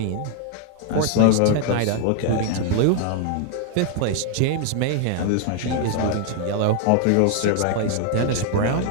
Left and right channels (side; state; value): both; different; correlation 0.00